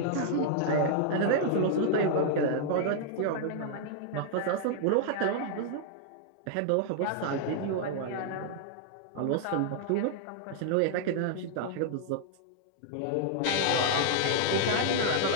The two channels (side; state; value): both; different; correlation -0.01